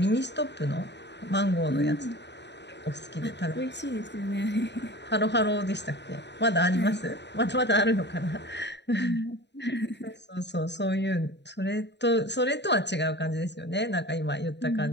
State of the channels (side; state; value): right; late; 0.50 ms